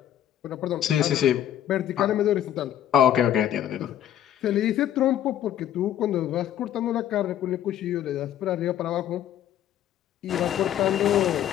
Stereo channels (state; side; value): quieter; right; 11.2 dB